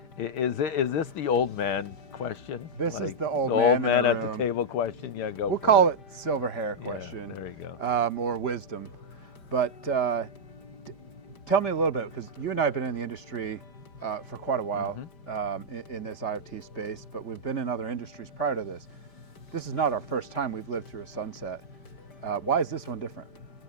Is this the old man question? This is the old the man old in man the at room. the table question. Yeah, go. We'll for call it silver hair question, there you go. or wisdom. But tell me a little bit, because you and I have been in the industry for quite a while in this IoT space, but we've been in other industries prior to this. This is not our first time we've lived through a sunset. Why is this one different?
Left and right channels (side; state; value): right; late; 5.1 ms